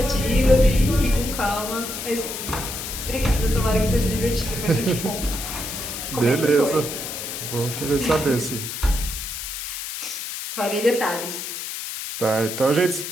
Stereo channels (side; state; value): left; noise; hiss, 6 dB below the sound